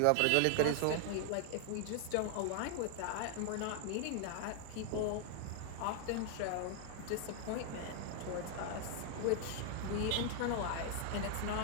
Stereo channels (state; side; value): different; both; correlation 0.00